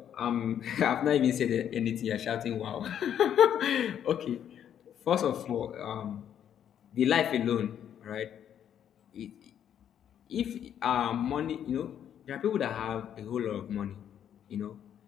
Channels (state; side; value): quieter; right; 9.5 dB